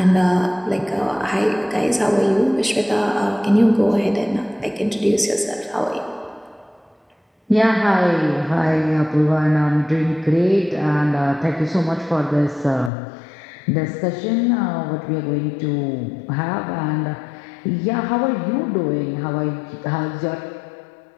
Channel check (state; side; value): drops out; right; at 12.9 s